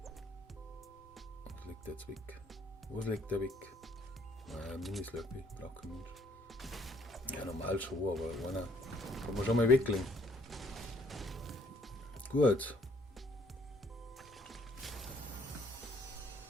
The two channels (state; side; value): normal; both; correlation 0.64